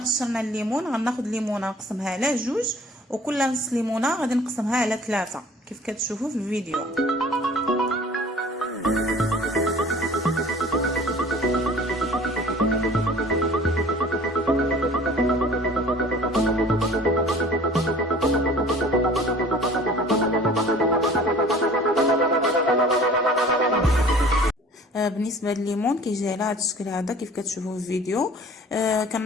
الليمون غناخذ ليمونه نقسمها على جوج، وكل نص ليمونه غادي نقسمها على 3 كيف كتشوفوا في الفيديو. بالنسبه لليمون كيجي على هذا الشكل هذا كيف كتشوفوا في الفيديو.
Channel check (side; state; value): both; normal; correlation 0.48